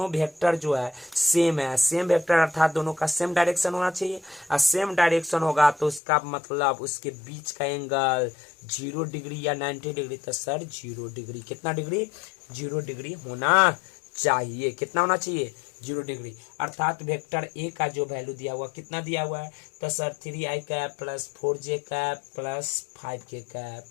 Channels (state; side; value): drops out; right; at 6.0 s